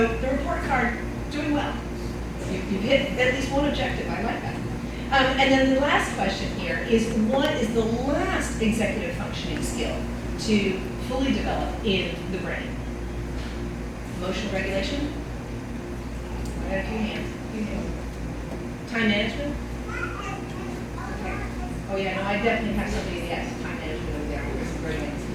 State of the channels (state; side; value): identical; both; correlation 1.00